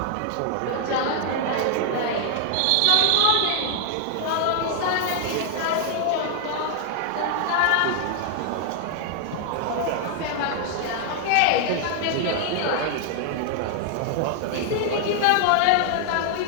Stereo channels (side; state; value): both; different; correlation 0.00